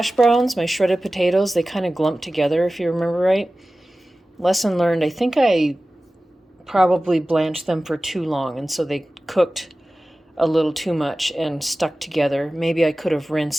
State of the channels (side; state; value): both; normal; correlation 0.96